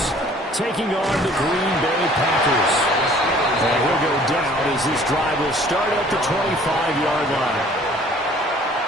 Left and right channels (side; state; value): both; normal; correlation 0.54